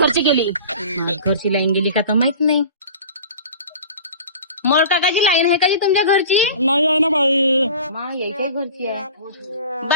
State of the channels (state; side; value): inverted; both; correlation -0.40